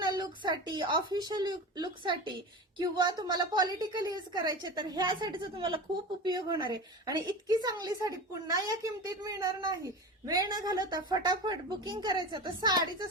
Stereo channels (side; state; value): both; normal; correlation 0.29